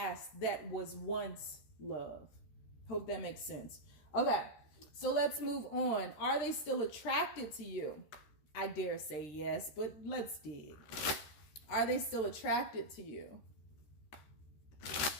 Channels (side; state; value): right; late; 13 ms